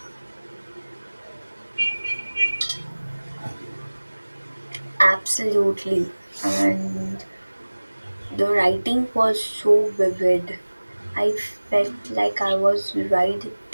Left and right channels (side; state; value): both; inverted; correlation -1.00